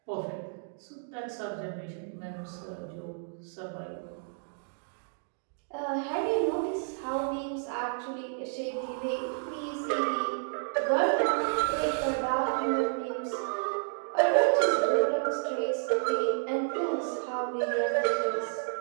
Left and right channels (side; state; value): left; silent; digital silence